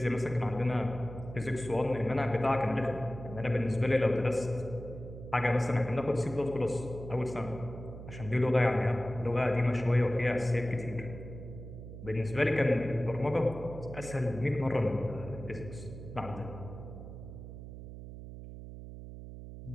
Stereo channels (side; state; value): right; noise; hum, 12 dB below the sound